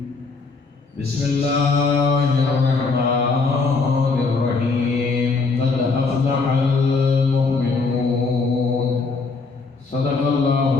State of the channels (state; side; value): quieter; right; 4.2 dB